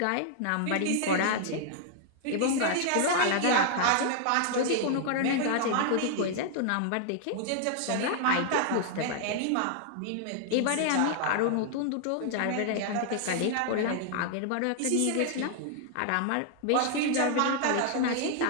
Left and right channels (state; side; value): different; both; correlation 0.00